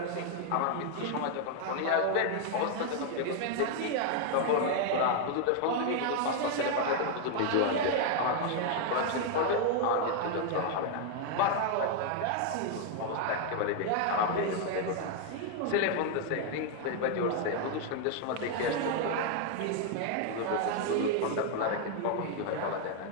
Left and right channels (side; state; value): both; different; correlation 0.00